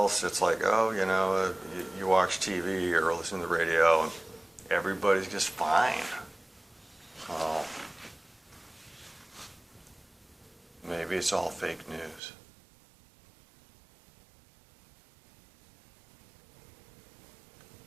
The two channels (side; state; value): left; drops out; at 12.2 s